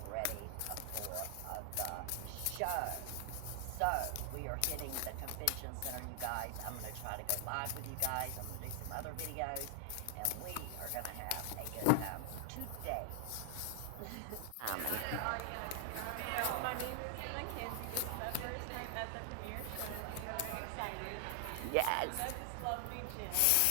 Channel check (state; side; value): different; both; correlation 0.00